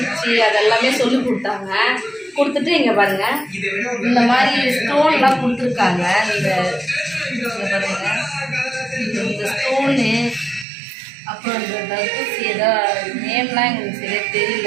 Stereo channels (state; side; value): drops out; left; at 10.7 s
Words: அதெல்லாமே சொல்லிக் கொடுத்தாங்க. கொடுத்துட்டு இங்கே பாருங்கள், இந்த மாதிரி ஸ்டோன்லாம் கொடுத்துருக்காங்க. இங்கே பாருங்கள், இந்த ஸ்டோனு அப்புறம் இந்த தர்பூசி ஏதோ நேம்லாம் எங்களுக்கு சரியாக